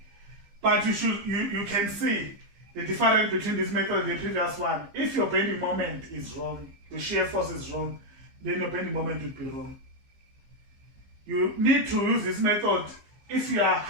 But you can see the difference between this method and the previous one. If your bending moment is wrong, your shear force is wrong, then your bending moment will be wrong. You need to use this method if you are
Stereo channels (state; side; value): late; left; 15 ms